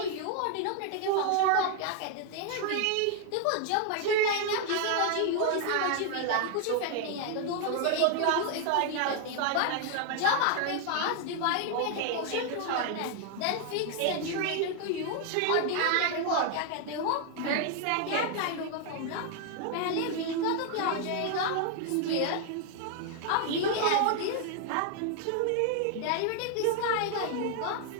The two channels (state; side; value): different; both; correlation 0.00